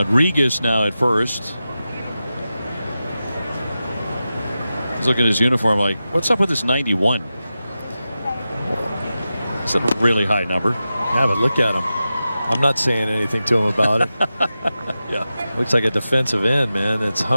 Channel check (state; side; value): inverted; both; correlation -0.93